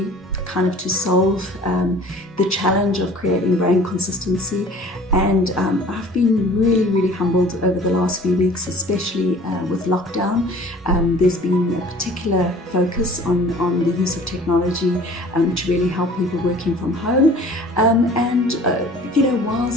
kind of to solve the challenge of creating brand consistency. And I've been really, really humbled over the last few weeks, especially with lockdown. There's been a particular focus on the use of technology to really help people working from home.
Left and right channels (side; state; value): both; normal; correlation 0.47